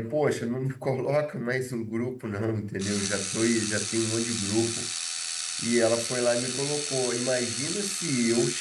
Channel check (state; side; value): identical; both; correlation 1.00